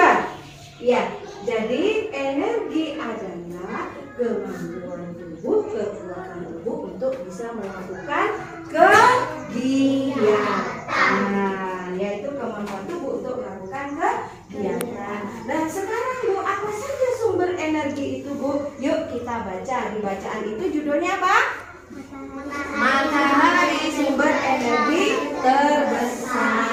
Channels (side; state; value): both; identical; correlation 1.00